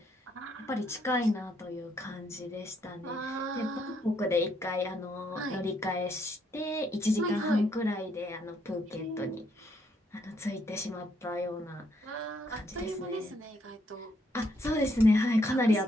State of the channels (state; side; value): normal; both; correlation 0.72